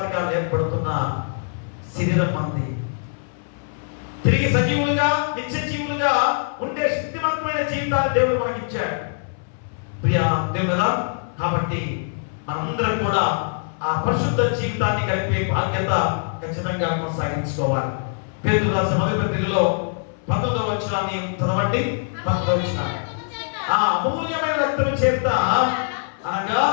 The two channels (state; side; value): silent; right; 62 dB below the other